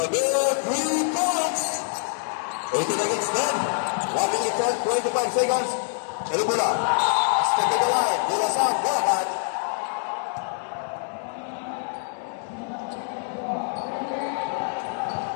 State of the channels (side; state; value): right; silent; digital silence